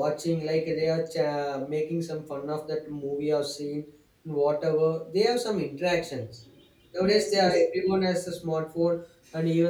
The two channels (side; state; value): both; identical; correlation 1.00